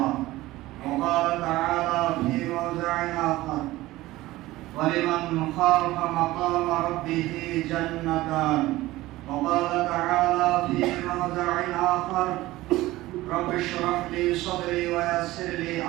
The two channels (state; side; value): quieter; left; 17.6 dB